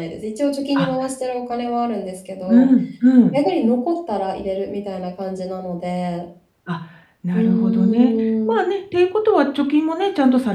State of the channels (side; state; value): both; identical; correlation 1.00